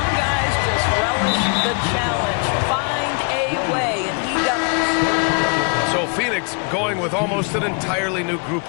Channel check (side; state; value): right; quieter; 38.7 dB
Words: guys just relish the challenge. Find a way, and he does. So Phoenix going with almost an entirely new group